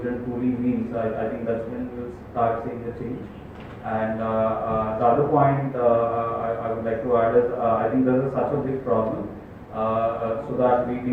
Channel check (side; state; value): both; identical; correlation 1.00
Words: truly means, I think that's when we'll start seeing the change. And the other point I would like to add is I think this is such a big problem, so that we